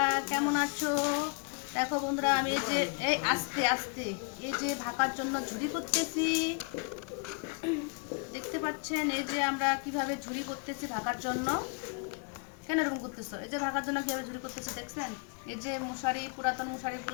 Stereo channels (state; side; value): quieter; right; 34.4 dB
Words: কেমন আছো? দেখো বন্ধুরা, আমি এই যে আস্তে আস্তে এই যে ভাকার জন্য ঝুড়ি করতেছি। দেখতে পাচ্ছেন এই যে আমরা কিভাবে ঝুড়ি করতেছি ভাকার জন্য। কেন এরকম করতেছো? এই যে ভাকার জন্য কিভাবে ঝুড়ি করতেছি দেখছেন? এই যে মশারি, পুরাতন